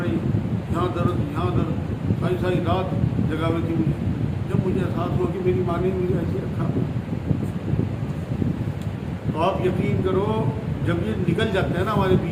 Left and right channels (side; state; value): both; identical; correlation 1.00